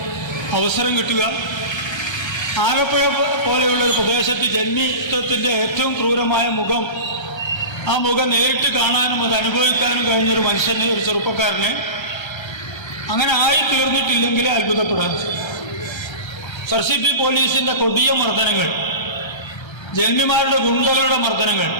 അവസരം കിട്ടുക, ആലപ്പുഴ പോലെയുള്ള ഒരു പ്രദേശത്ത് ജന്മിത്വത്തിൻ്റെ ഏറ്റവും ക്രൂരമായ മുഖം, ആ മുഖം നേരിട്ട് കാണാനും അത് അനുഭവിക്കാനും കഴിഞ്ഞൊരു മനുഷ്യന്, ഒരു ചെറുപ്പക്കാരന് അങ്ങനെ ആയിത്തീർന്നിട്ടില്ലെങ്കിൽ അത്ഭുതപ്പെടാൻ. SRCP പോലീസിൻ്റെ കൊടിയ മർദ്ദനങ്ങൾ, ജന്മിമാരുടെ ഗുണ്ടകളുടെ മർദ്ദനങ്ങൾ,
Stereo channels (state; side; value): late; right; 1.3 ms